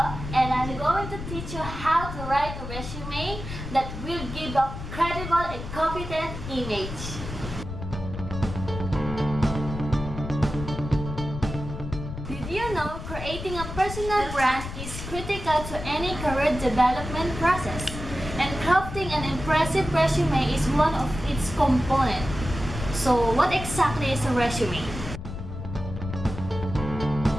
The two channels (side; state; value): left; noise; rumble, 8 dB below the sound